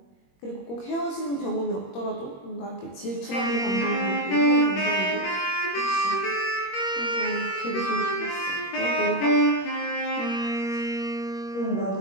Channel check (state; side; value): late; right; 21 ms